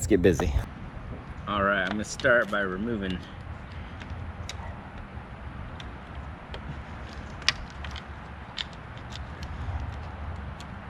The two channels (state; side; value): identical; both; correlation 1.00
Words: get busy. All right, I'm gonna start by removing